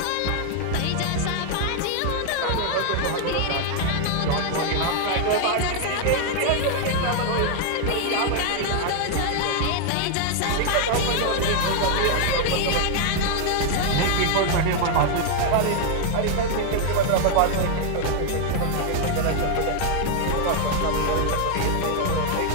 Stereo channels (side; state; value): both; different; correlation 0.00